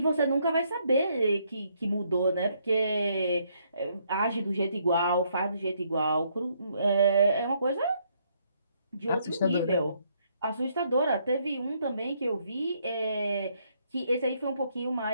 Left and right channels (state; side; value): inverted; both; correlation -0.71